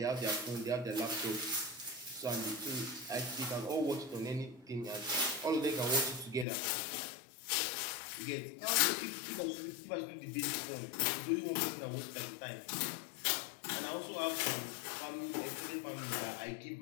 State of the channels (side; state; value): right; drops out; at 6.5 s